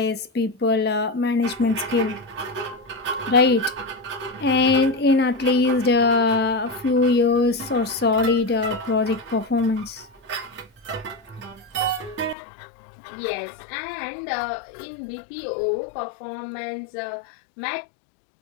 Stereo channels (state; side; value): drops out; right; at 12.4 s